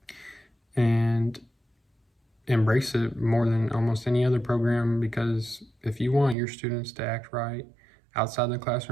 and embrace it more than almost any other program. Because if you want your students to act right outside the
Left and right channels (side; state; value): left; drops out; at 6.4 s